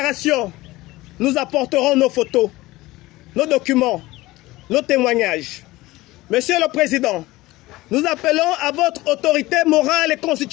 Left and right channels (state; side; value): quieter; right; 19.0 dB